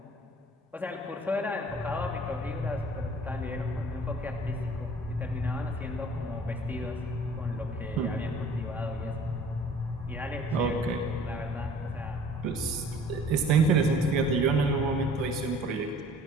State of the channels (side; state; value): both; normal; correlation 0.51